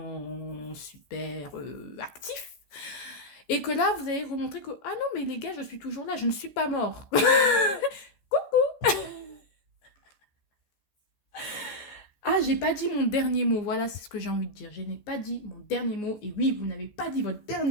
super actif. Et que là, vous allez remontrer que, ah non, mais les gars, je suis toujours là, je ne suis pas mort. Ah, j'ai pas dit mon dernier mot. Voilà, c'est ce que j'ai envie de dire. Je n'ai pas dit mon dernier mot. Et oui, vous n'avez pas dit votre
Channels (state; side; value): late; right; 14 ms